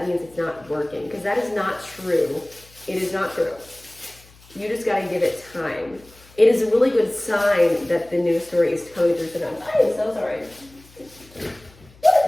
means it's not working, because that is not true. It is not true. You just got to give it time. It is a really good sign that the new story is coming through for them. I am so sorry. What is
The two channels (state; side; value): noise; left; hum, 26 dB below the sound